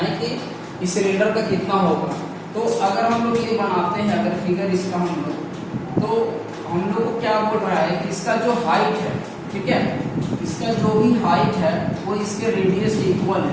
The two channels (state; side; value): identical; both; correlation 1.00